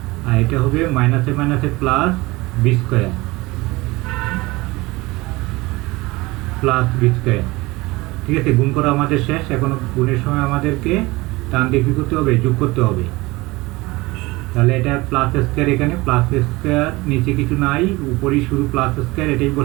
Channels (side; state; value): left; quieter; 21.7 dB